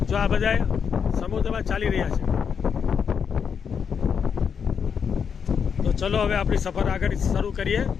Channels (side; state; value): right; quieter; 6.9 dB